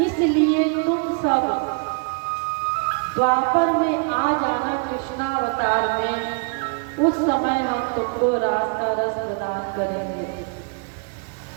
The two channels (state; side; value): quieter; left; 38.7 dB